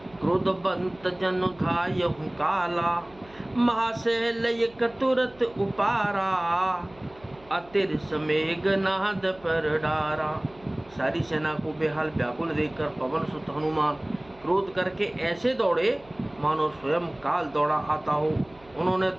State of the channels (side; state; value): right; noise; hum, 26 dB below the sound